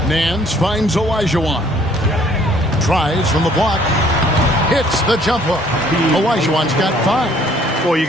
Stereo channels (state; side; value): normal; both; correlation 0.59